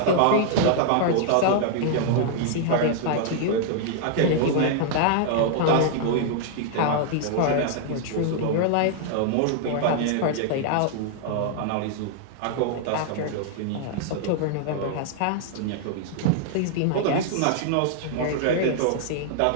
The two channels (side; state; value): both; different; correlation -0.01